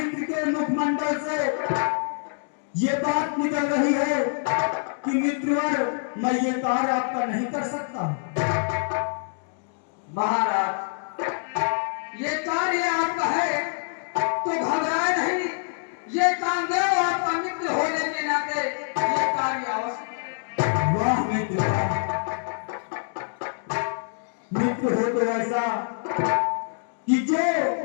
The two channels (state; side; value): silent; right; digital silence